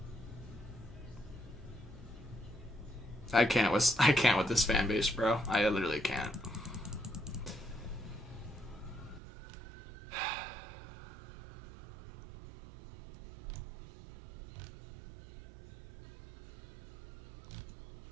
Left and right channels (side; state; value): left; drops out; at 9.2 s